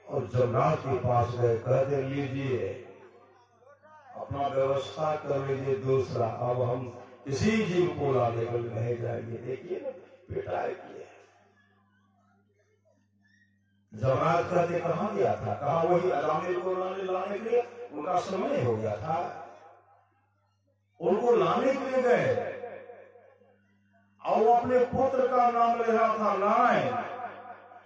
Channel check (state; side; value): identical; both; correlation 1.00